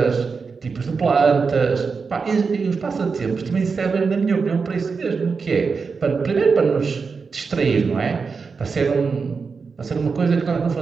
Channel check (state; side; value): quieter; left; 5.0 dB